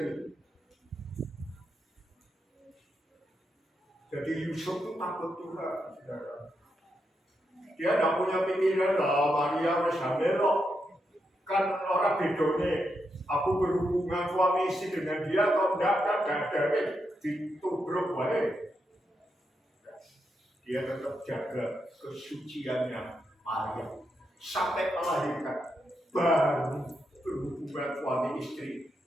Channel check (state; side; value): normal; both; correlation 0.83